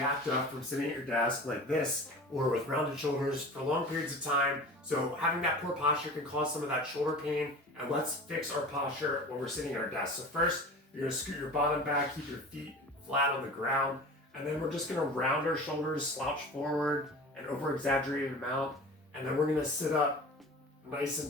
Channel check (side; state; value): both; normal; correlation 0.37